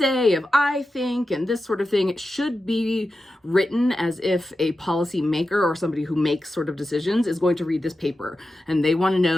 of I think and this sort of thing. It should be written as if a policy maker or somebody who makes sort of decisions is going to read this paper and they want to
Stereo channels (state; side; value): normal; both; correlation 0.91